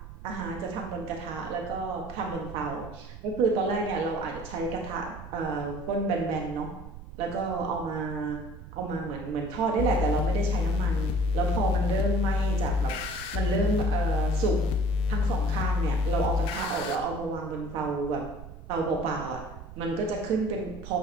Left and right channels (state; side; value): noise; right; rumble, 13 dB below the sound